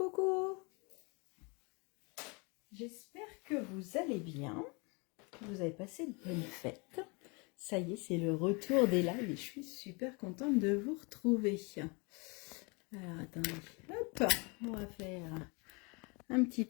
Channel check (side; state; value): right; quieter; 30.4 dB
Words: J'espère que vous allez bien, que vous avez passé de bonnes fêtes. Ça y est, c'est le retour des lives et je suis super contente de vous retrouver. Alors attendez, hop, on va faire un petit